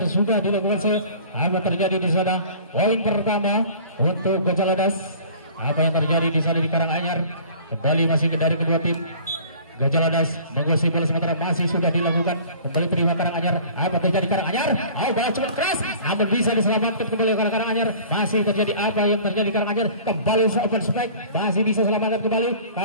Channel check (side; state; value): both; inverted; correlation -0.46